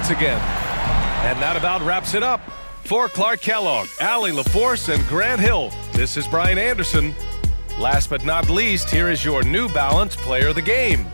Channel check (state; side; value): inverted; both; correlation -1.00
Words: again. And that about wraps it up. For Clark Kellogg, Allie LaForce, and Grant Hill, this is Brian Anderson. Last but not least, here is your New Balance Player of the Game,